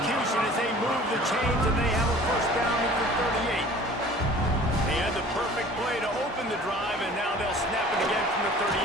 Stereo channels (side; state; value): both; normal; correlation 0.47